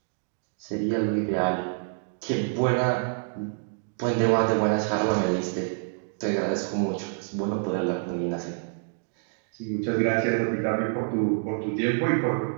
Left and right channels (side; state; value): left; silent; digital silence